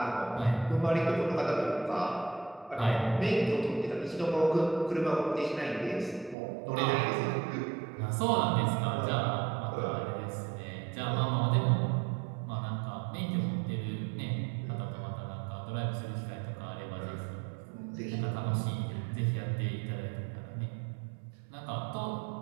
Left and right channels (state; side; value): drops out; left; at 6.4 s